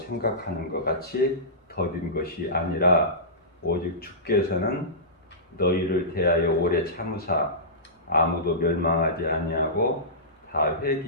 것 같이 더딘 것이 아니라 오직 주께서는 너희를 대하여 오래 참으사 아무도 멸망하지 아니하고 다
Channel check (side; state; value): both; normal; correlation -0.20